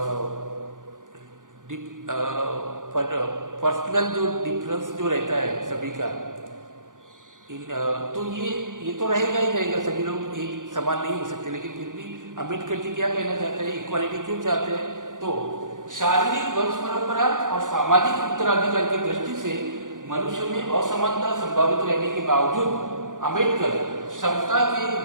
पर्सनल जो डिफरेंस जो रहता है सभी का तो ये तो रहेगा ही रहेगा, सभी लोग एक समान नहीं हो सकते। लेकिन फिर भी अम्बेडकर जी क्या कहना चाहते हैं, इक्वालिटी क्यों चाहते हैं? तो शारीरिक वंश परंपरा और सामाजिक उत्तराधिकार की दृष्टि से मनुष्य में असमानता संभावित रहने के बावजूद अम्बेडकर समता के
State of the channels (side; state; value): left; late; 0.88 ms